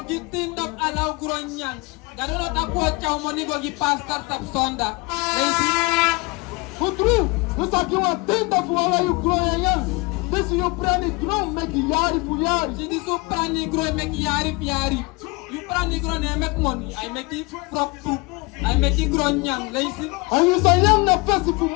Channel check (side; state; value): right; quieter; 26.2 dB